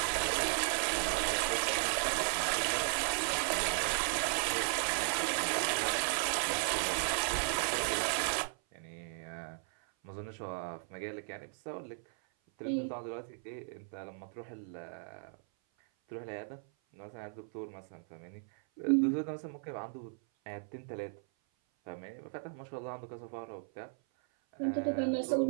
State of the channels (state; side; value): silent; left; 54 dB below the other